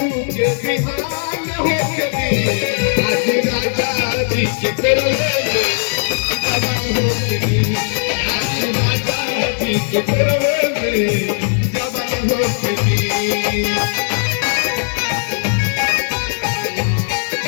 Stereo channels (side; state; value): right; silent; 66 dB below the other